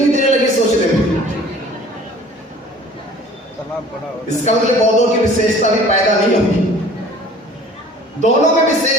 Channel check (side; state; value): both; normal; correlation 0.48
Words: देर लगी सोचने में। इसका मतलब बौद्धों की विशेषता भी पैदा नहीं होगी। दोनों में